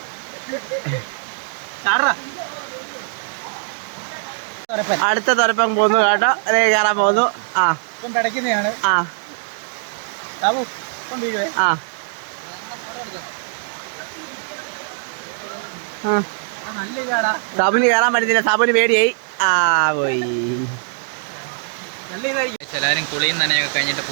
അടുത്ത തുരപ്പം പോകുന്നു കേട്ടോ. അതേ കയറാൻ പോകുന്നു. സാബുന് കയറാൻ പറ്റുന്നില്ല. സാബുന് പേടിയായി. പോയി. എല്ലാവരും കുളിയും നനയൊക്കെ കഴിഞ്ഞിട്ട്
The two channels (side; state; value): left; silent; digital silence